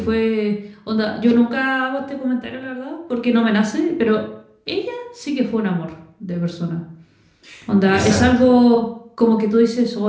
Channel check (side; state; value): both; identical; correlation 1.00